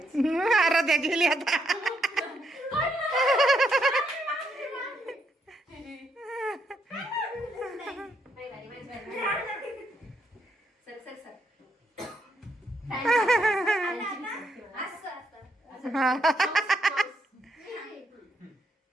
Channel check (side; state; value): both; normal; correlation 0.77